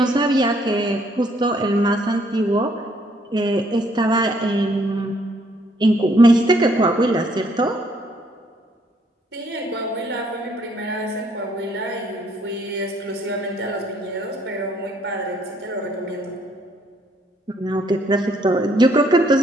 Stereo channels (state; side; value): normal; both; correlation 0.67